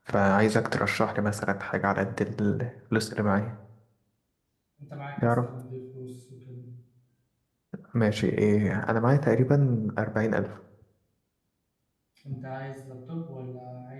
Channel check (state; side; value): identical; both; correlation 1.00